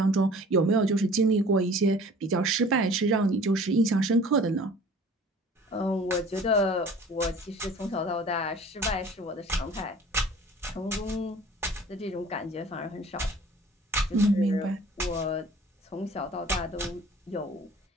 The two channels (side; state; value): both; normal; correlation 0.47